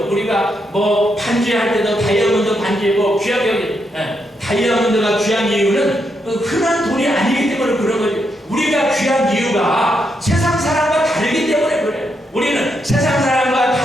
우리가 뭐 반지할 때도 다이아몬드 반지 뭐 귀하게 여기, 다이아몬드가 귀한 이유는 흔한 돈이 아니기 때문에 그런 거죠. 우리가 귀한 이유가 세상 사람과 다르기 때문에 그래요. 우리는 세상 사람과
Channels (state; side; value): normal; both; correlation 0.80